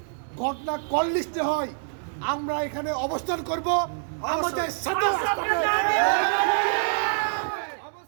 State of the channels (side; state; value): left; silent; digital silence